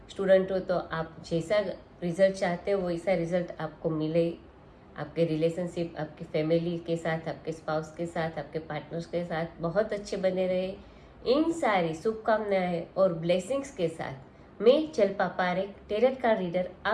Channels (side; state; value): both; identical; correlation 1.00